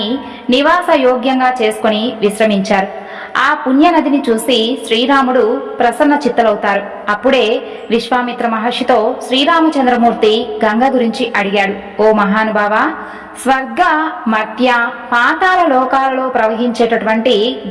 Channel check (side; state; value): both; identical; correlation 1.00